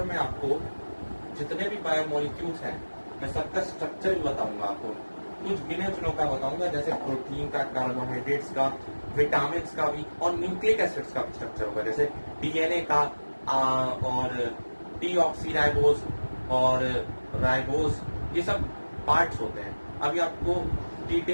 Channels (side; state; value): both; inverted; correlation -1.00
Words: में आपको जितने भी बायोमोलिक्यूल्स हैं, मैं सबका स्ट्रक्चर भी बताऊंगा आपको, कुछ गिने चुनों का बताऊंगा, जैसे प्रोटीन का, कार्बोहाइड्रेट्स का, विटामिन का भी, और न्यूक्लिक एसिड्स का भी स्ट्रक्चर होगा, जैसे डीएनए का और डीऑक्सीराइबोज और राइबोज, ये सब पार्ट्स होते हैं। अभी आपको